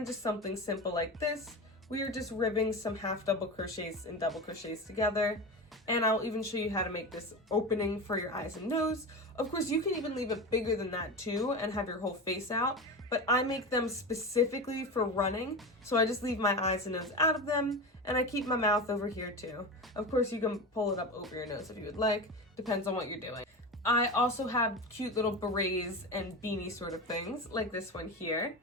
just something simple like this. We are just ribbing some half double crochets and double crochets together. And I'll even show you how to make this opening for your eyes and nose. Of course, you can even leave it bigger than that too and have your whole face out. But I make them specifically for running. So I just leave my eyes and nose out of them and I keep my mouth over here too. Of course, you can pull it up over your nose if you would like, depends on what you're doing. I also have cute little berets and beanie sort of things, like this one here.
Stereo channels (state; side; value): normal; both; correlation 0.24